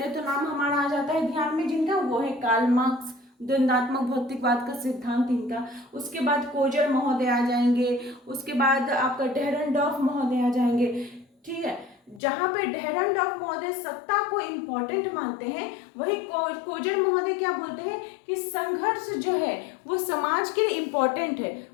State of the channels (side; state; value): right; drops out; at 12.2 s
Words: तो नाम हमारा आ जाता है ध्यान में जिनका, वो है कार्ल मार्क्स, द्वंद्वात्मक भौतिकवाद का सिद्धांत इनका। उसके बाद कोजर महोदय आ जाएंगे, उसके बाद आपका डेहरनडॉर्फ महोदय आ जाएंगे। ठीक है, जहां पे डेहरनडॉर्फ महोदय सत्ता को इम्पोर्टेंट मानते हैं, वही कोजर महोदय क्या बोलते हैं कि संघर्ष जो है वो समाज के लिए इम्पोर्टेंट है,